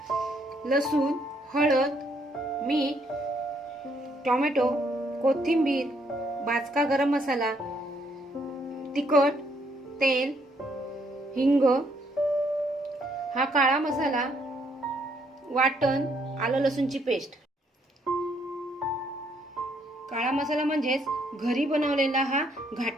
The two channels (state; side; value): normal; both; correlation 0.70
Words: लसूण, हळद, मीठ, टोमॅटो, कोथिंबीर, भाजका गरम मसाला, तिखट, तेल, हिंग, हा काळा मसाला, वाटण, आलं लसूणची पेस्ट. काळा मसाला म्हणजेच घरी बनवलेला हा